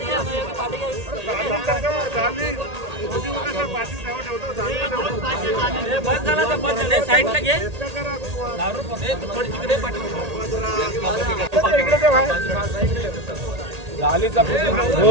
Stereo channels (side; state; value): left; late; 1.8 ms